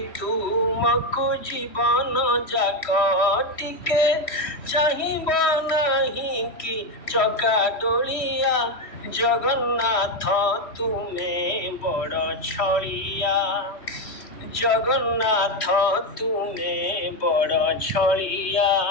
তুমকু জীবন যাক। টিকে চাহিব নাহি কি চকা ডোলিয়া, জগন্নাথ তুমে বড় ছড়িয়া, জগন্নাথ তুমে বড় ছড়িয়া।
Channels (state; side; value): late; right; 3.1 ms